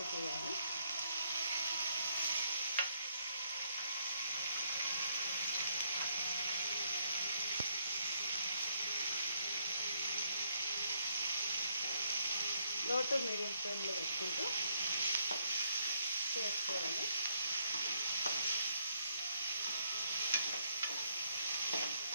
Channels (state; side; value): inverted; both; correlation -0.72